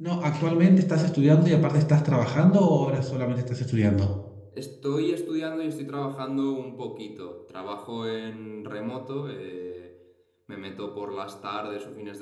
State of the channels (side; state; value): both; identical; correlation 1.00